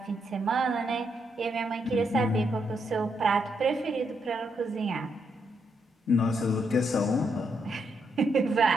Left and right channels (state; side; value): normal; both; correlation 0.78